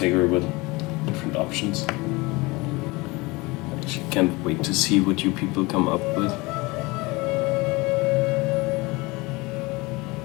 with different options. I actually can't wait to see what you people come up with.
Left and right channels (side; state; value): right; quieter; 24.0 dB